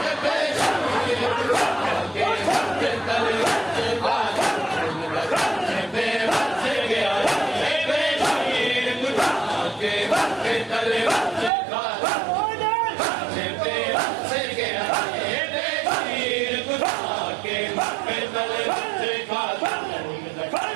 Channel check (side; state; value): left; drops out; at 11.5 s